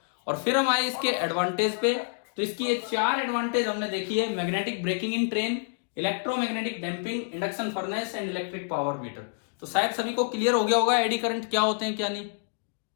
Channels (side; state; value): right; silent; digital silence